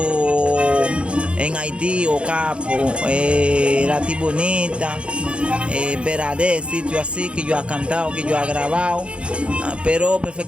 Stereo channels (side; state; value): left; late; 0.058 ms